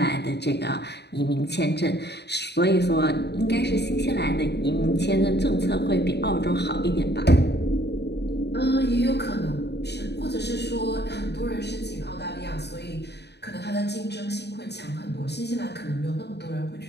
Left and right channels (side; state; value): right; late; 0.49 ms